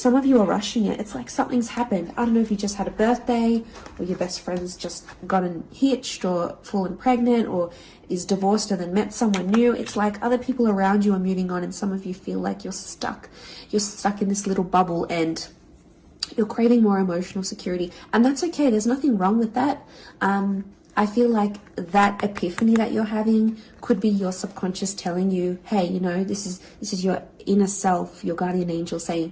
of you are rushing it. It's like something's happened. I don't know if you just had a birthday, or your best friend's just gotten hitched or fallen pregnant, or is divorced and then met someone new. It's like other people around you are moving on, and some of you feel like you're stuck. You're stuck in this little bubble and you're craving more emotional security. And that's okay. There's nothing wrong with that. I feel like that epiphany that you're having could be your subconscious telling you, hey, you know, this is your inner self, your guardian angel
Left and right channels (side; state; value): both; identical; correlation 1.00